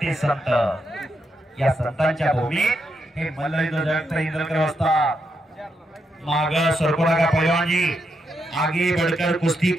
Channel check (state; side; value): normal; both; correlation 0.82